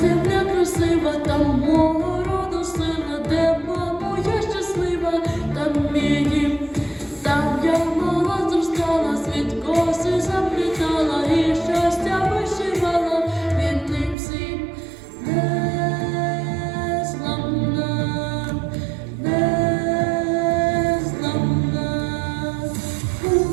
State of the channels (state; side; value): drops out; left; at 14.2 s